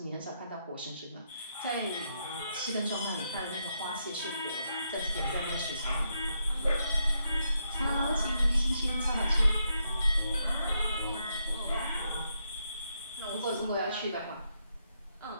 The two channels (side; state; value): both; inverted; correlation -0.79